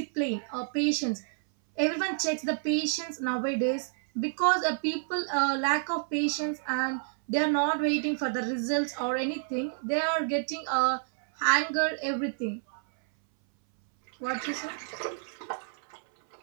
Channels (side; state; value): left; silent; 58 dB below the other